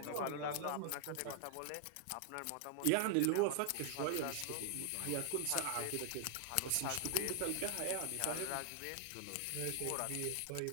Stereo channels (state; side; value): different; both; correlation 0.00